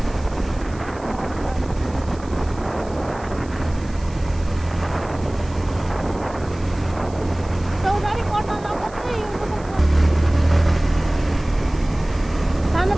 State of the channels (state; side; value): noise; right; hiss, 23 dB below the sound